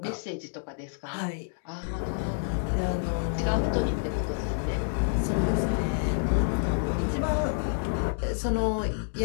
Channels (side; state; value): right; silent; digital silence